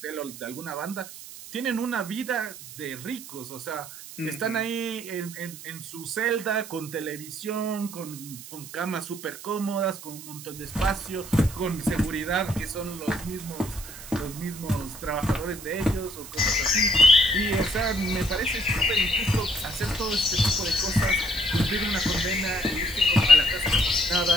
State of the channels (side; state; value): right; noise; hiss, 14 dB below the sound